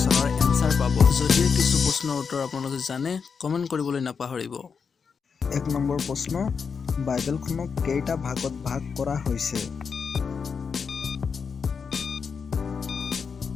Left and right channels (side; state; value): right; quieter; 5.9 dB